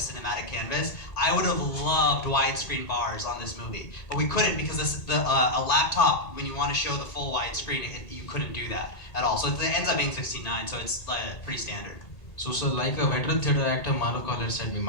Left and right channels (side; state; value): right; late; 1.8 ms